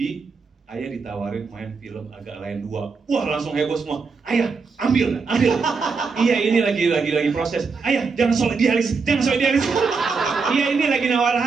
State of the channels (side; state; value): left; quieter; 4.8 dB